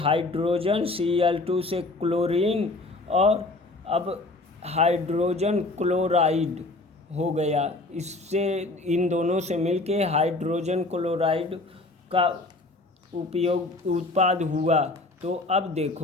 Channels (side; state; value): right; quieter; 3.1 dB